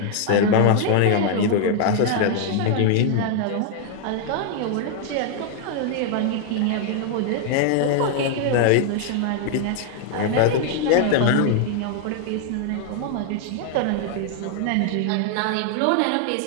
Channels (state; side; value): different; both; correlation 0.00